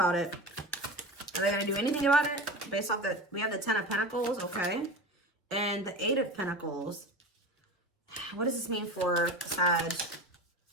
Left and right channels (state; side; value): normal; both; correlation 0.30